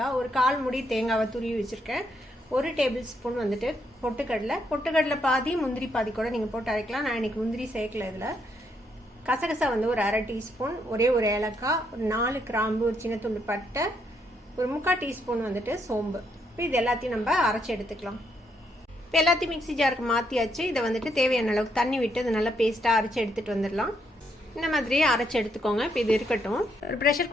ஒரு 1/4 முடி தேங்காவை துருவி வச்சுருக்கேன். 1 டேபிள் ஸ்பூன் பொட்டுக்கடலை பாதி, முந்திரி பாதி கூட நீங்கள் போட்டு அரைக்கலாம். நான் இன்றைக்கி முந்திரி சேர்க்கல. இதில் கசகசா ஒரு 1/2 டீஸ்பூன், ஒரே ஒரு ஏலக்காய், ஒரு 4 கிராம்பு, ஒரு சின்ன துண்டு பட்டை, ஒரு 3/4 டீஸ்பூன் சோம்பு. இப்போ இது எல்லாத்தையும் நம்ம அரைச்சி எடுத்துக்கலாம். இப்போ எல்லாத்தையும் மிக்ஸி ஜாருக்கு மாற்றியாச்சு. இதை தேவையான அளவுக்கு தண்ணி விட்டு அதை நல்லா பேஸ்ட்டாக அரைச்சி எடுத்துகிட்டு வந்துடலாம். இந்த மாதிரி அரைச்சி எடுத்துக்கோங்க. இப்போ இது இருக்கட்டும். ஒரு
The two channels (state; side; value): normal; both; correlation 0.75